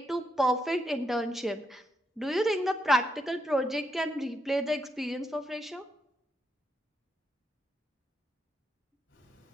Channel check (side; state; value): both; normal; correlation 0.80